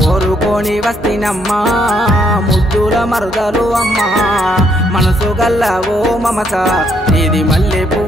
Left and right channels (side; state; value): both; normal; correlation 0.72